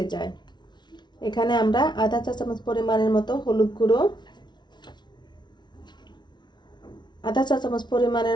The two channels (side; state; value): right; late; 0.21 ms